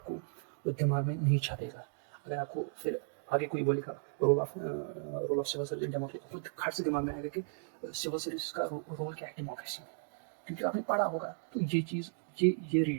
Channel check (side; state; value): left; silent; digital silence